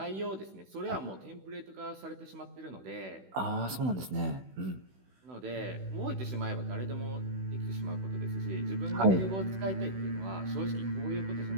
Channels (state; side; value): late; left; 16 ms